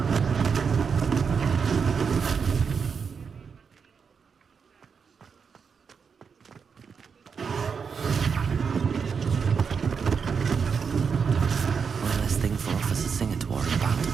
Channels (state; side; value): quieter; left; 6.0 dB